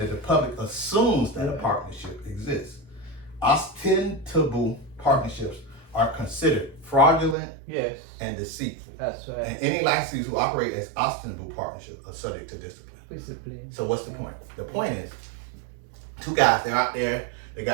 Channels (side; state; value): left; drops out; at 7.4 s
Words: the public assumes that a partnership exists. Ostensible partnerships are considered fraudulent and deceitful. That's right. And any licensees who operate as ostensible partnerships are subject to discipline. So what's the point? The point is, two guys, they're out there, they